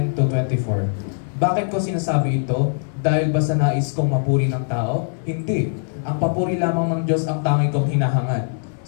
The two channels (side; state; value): right; silent; 62 dB below the other